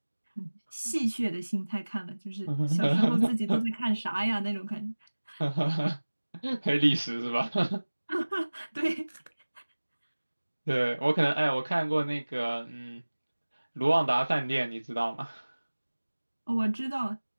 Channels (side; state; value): both; inverted; correlation -1.00